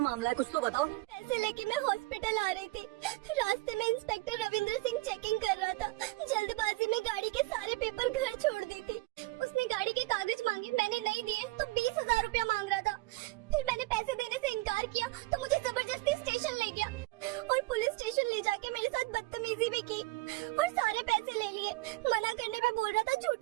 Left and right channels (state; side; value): quieter; left; 21.4 dB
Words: मामला है, कुछ तो बताओ। पैसे लेके मैं हॉस्पिटल आ रही थी। रास्ते में इंस्पेक्टर रविंद्र सिंह चेकिंग कर रहा था। जल्दबाजी में गाड़ी के सारे पेपर घर छोड़ दी थी। उसने गाड़ी के कागज मांगे, मैंने नहीं दिए तो 20,000 रुपया मांग रहा था। फिर मैंने पैसे देने से इनकार किया तो मुझे जबरदस्ती स्टेशन ले गया और पुलिस स्टेशन ले जाके मेरे साथ बदतमीजी भी की और सारे पैसे ले लिए। मना करने पे बोल रहा था